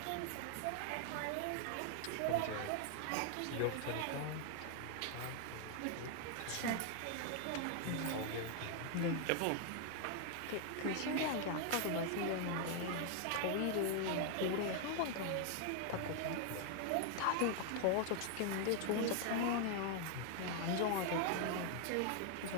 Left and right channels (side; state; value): both; different; correlation 0.00